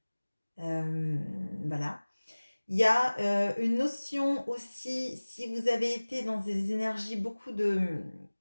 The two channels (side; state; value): both; inverted; correlation -1.00